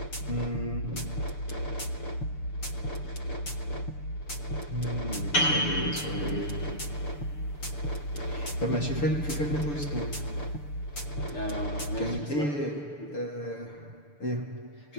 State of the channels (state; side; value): late; right; 6.8 ms